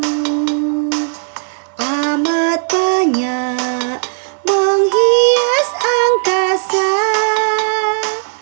amat banyak menghias angkasa.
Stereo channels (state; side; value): silent; left; digital silence